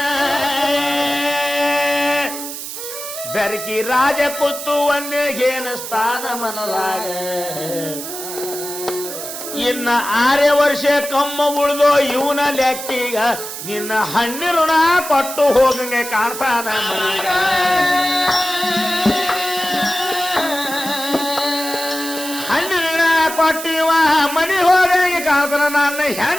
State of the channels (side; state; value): right; noise; hiss, 8 dB below the sound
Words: ಬೆರಕಿ ರಾಜ ಕೂತು ಒಂದೇಗೇನ ಸ್ಥಾನ ಮನದಾಗ ಇನ್ನ 6 ವರ್ಷ ಕಮ್ಮ ಉಳಿದೋ ಇವನ ಲೆಕ್ಕೀಗ ನಿನ್ನ ಹಣ್ಣಿ ಋಣ ಕೊಟ್ಟು ಹೋಗಂಗೆ ಕಾಣ್ತಾನ ಕೊಟ್ಟಿವ ಮನಿ ಹೋಗಿ ಕಾಣ್ತಾನ ನನ್ನ